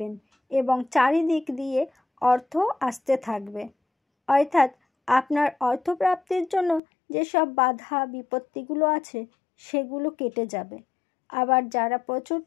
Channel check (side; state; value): right; drops out; at 6.8 s